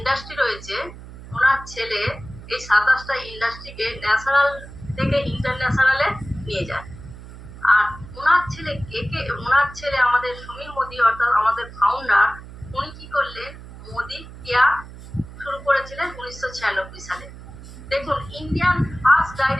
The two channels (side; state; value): right; noise; hum, 15 dB below the sound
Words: রয়েছে, ওনার ছেলে এই 27টা ইন্ডাস্ট্রিকে ন্যাশনাল থেকে ইন্টারন্যাশনালে নিয়ে যায়। আর ওনার ছেলে ওনার ছেলে আমাদের সমীর মোদি অর্থাৎ আমাদের ফাউন্ডার, উনি কি করলেন, মোদি কেয়ার শুরু করেছিলেন 1996 সালে। দেখুন, Indian first